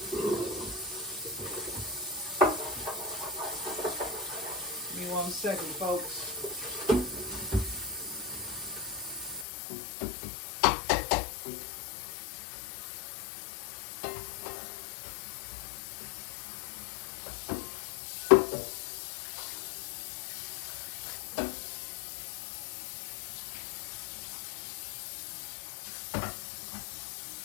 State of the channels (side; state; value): right; drops out; at 9.5 s